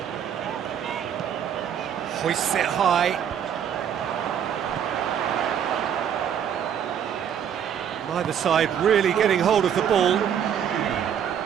Hoists it high. Neither side really getting hold of the ball.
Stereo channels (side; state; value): left; quieter; 8.8 dB